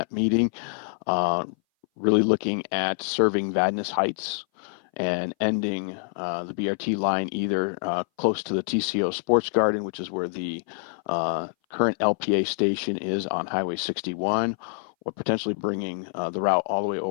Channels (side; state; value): right; silent; 58 dB below the other